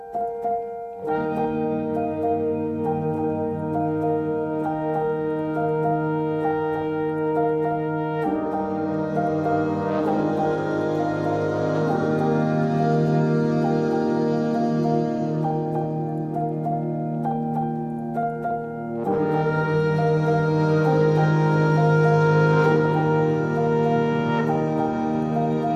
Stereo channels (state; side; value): identical; both; correlation 1.00